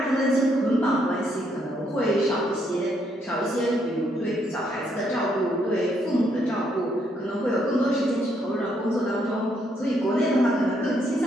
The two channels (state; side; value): normal; both; correlation 0.73